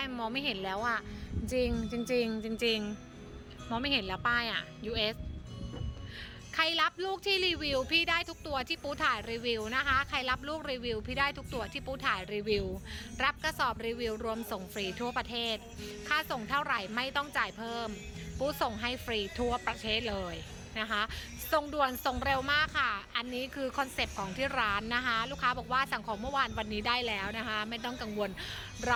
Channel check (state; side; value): identical; both; correlation 1.00